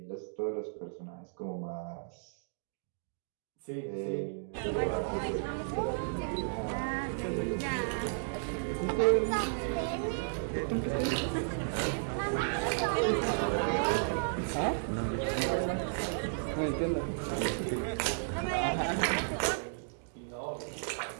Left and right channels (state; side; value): silent; left; digital silence